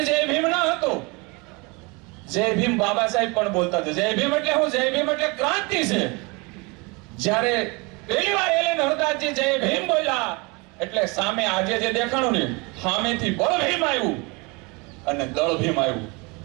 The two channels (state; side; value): quieter; left; 28.0 dB